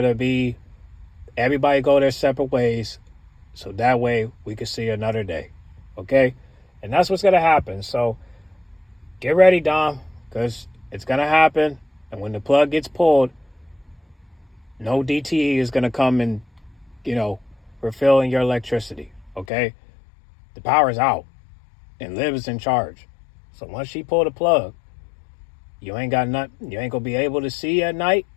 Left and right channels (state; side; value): drops out; right; at 19.5 s